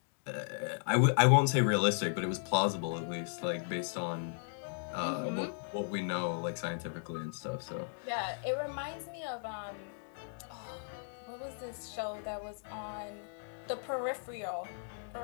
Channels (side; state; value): right; silent; digital silence